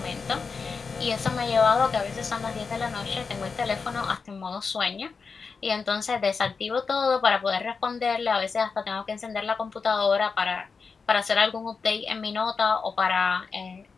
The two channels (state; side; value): quieter; right; 5.0 dB